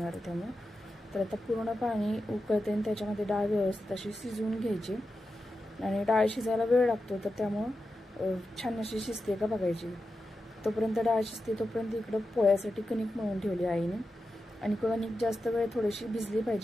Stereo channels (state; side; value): normal; both; correlation 0.90